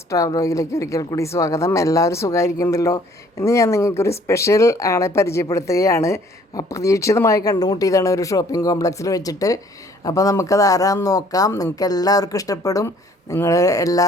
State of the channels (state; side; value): normal; both; correlation 0.58